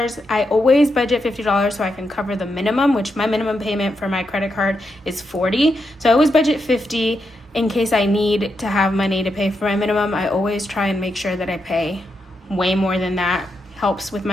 I always budget $50 so I can cover the minimum, which my minimum payment for my credit card is $40. So I always budget $50 in case I need to have money to pay for my minimum. I always try and make sure that I pay way more than that. Helps with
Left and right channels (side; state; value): both; normal; correlation 0.83